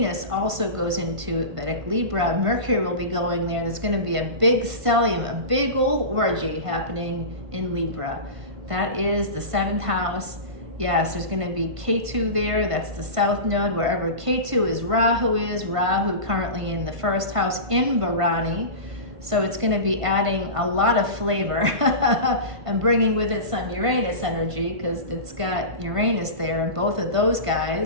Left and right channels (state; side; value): late; left; 1.5 ms